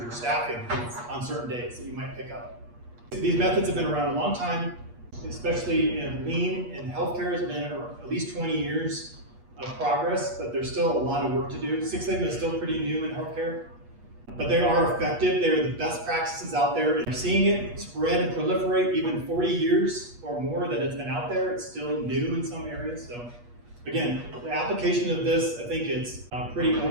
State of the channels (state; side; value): late; left; 8.4 ms